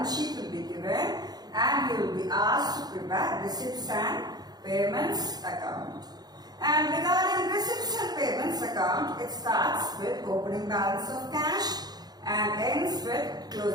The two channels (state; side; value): late; left; 0.19 ms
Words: sheet will be given and you will be asked to prepare receipts and payments account. And regarding receipts and payments account, it starts with opening balance of cash and ends with